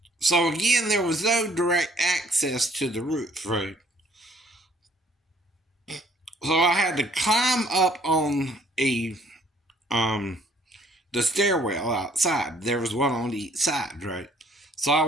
So again, there was no direct access to the roof, right? So I had to climb up on the stairwell outside. There was one on each side, right? So I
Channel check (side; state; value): both; normal; correlation 0.61